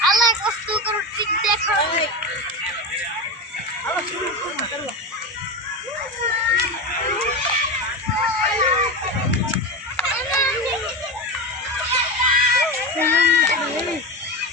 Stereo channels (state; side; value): normal; both; correlation 0.20